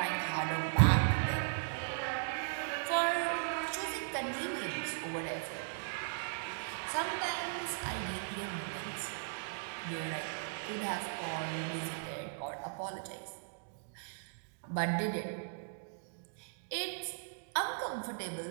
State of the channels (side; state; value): left; silent; digital silence